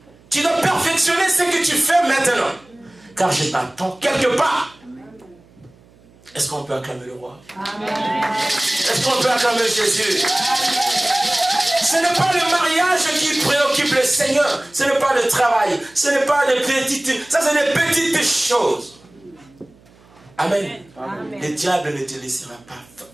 Tu dois perfectionner ce que tu fais maintenant. Car je t'attends quelque part. Est-ce qu'on peut acclamer le roi? Amen. Est-ce qu'on peut acclamer Jésus? Ce n'est pas le mariage qui préoccupe le Seigneur. Ce n'est pas le travail. Ce n'est pas des petites... Ça, c'est des petites choses. Amen. Amen. Le diable ne te laissera pas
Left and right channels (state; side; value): noise; right; hum, 28 dB below the sound